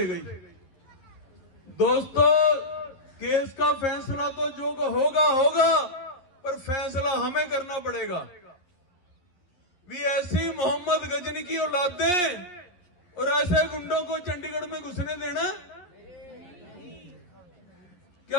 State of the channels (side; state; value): right; late; 11 ms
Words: गई। दोस्तों, केस का फैसला तो जो होगा होगा, पर फैसला हमें करना पड़ेगा। भी ऐसी मोहम्मद गजनी की औलादें और ऐसे गुंडों को चंडीगढ़ में घुसने देना?